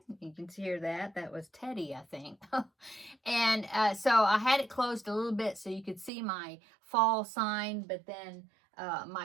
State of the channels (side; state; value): left; drops out; at 6.1 s